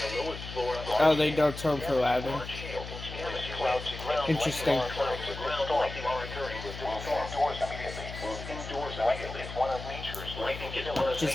Oh, they don't turn for louding. Interesting. Just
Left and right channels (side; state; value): left; noise; hum, 10 dB below the sound